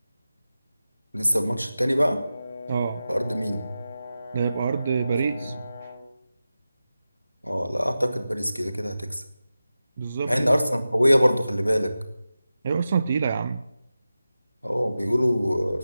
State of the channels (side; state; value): both; inverted; correlation -0.93